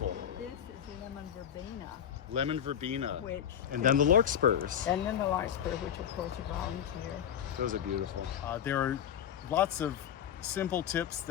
This is lemon verbena. Lemon verbena. Which And then the larkspurs. And then the larkspur, which of course are volunteer. Those are beautiful. There are lots of simple tips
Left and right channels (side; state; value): right; quieter; 9.2 dB